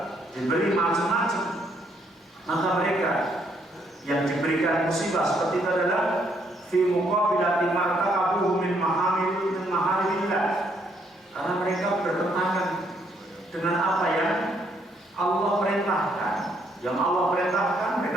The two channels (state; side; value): normal; both; correlation 0.71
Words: diberi macam-macam. Maka mereka yang diberikan musibah seperti itu adalah fi muqabilati martaqabuhu min maharimillah, karena mereka bertentangan dengan apa yang Allah perintahkan. Yang Allah perintahkan